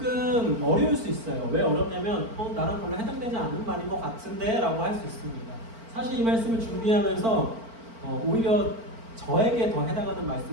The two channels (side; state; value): left; late; 4.4 ms